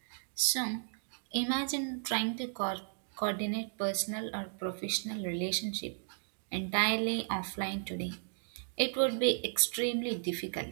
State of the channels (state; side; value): silent; left; digital silence